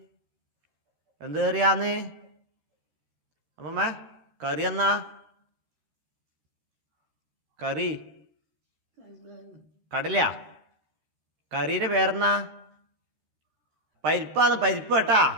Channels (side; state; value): left; late; 13 ms